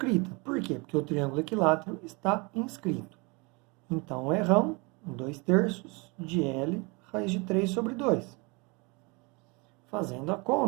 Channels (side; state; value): left; quieter; 28.9 dB